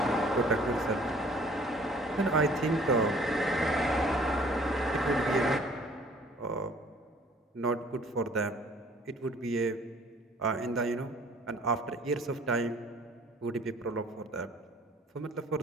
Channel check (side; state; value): both; normal; correlation 0.55